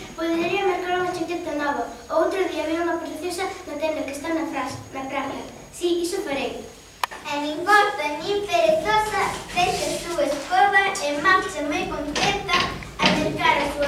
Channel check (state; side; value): identical; both; correlation 1.00